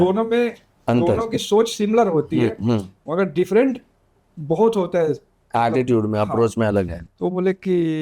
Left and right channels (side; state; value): both; identical; correlation 1.00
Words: में दोनों की सोच सिमिलर होती है, मगर डिफरेंट बहुत होता है, एटीट्यूड में, अप्रोच में अलग है। तो बोले